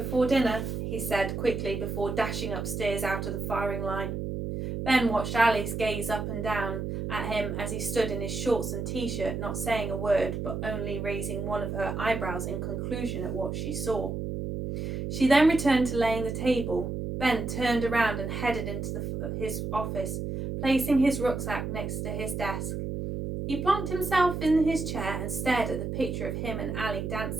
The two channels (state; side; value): noise; right; hum, 3 dB below the sound